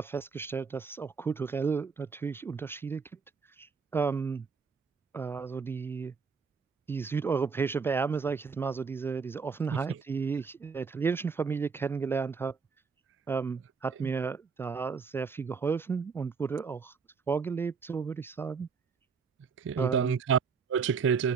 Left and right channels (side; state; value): left; quieter; 5.4 dB